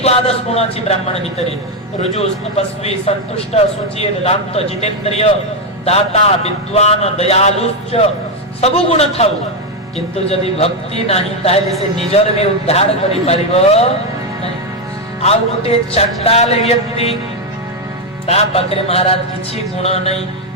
गुण अछि ब्राह्मण भितरे रुजु तपस्वी संतुष्ट सुचिर रामत जितेंद्रिय दाता विद्वान दयालुश्च सब गुण थाउ किंतु यदि भक्ति नाही ताहेले से निजर में उद्धार करि पारिबो आ गोटे चंडाल व्यक्ति ता पाखरे महाराज किछि गुण नहीं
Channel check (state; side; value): normal; both; correlation 0.05